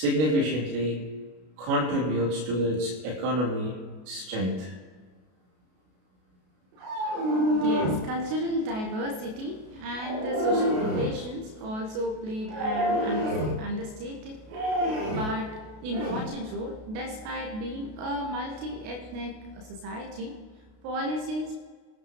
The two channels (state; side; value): late; left; 33 ms